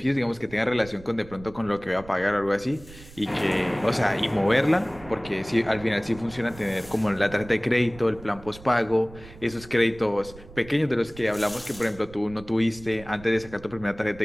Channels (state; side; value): noise; right; rumble, 19 dB below the sound